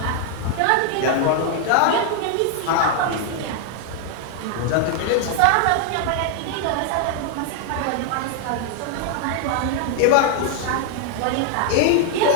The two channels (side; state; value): both; different; correlation 0.00